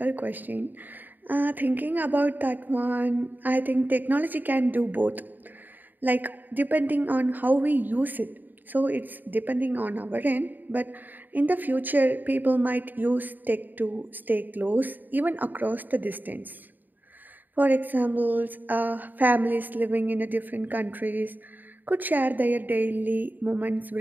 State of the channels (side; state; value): left; late; 0.088 ms